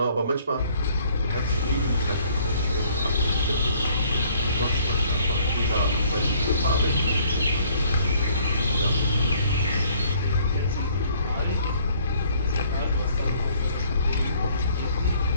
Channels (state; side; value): inverted; both; correlation -0.60